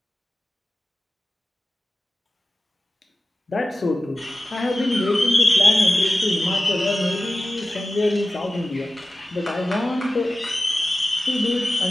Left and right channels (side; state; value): both; normal; correlation 0.94